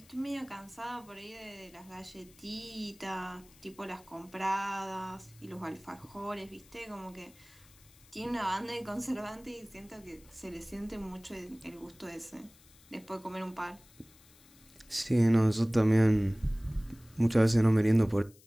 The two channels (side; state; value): left; noise; hiss, 26 dB below the sound